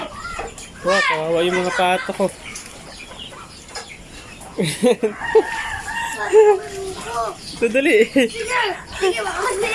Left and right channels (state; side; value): identical; both; correlation 1.00